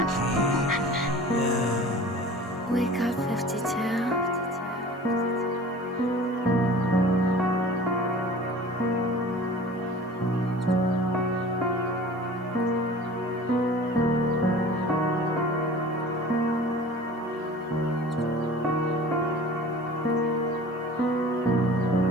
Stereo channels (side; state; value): both; normal; correlation 0.42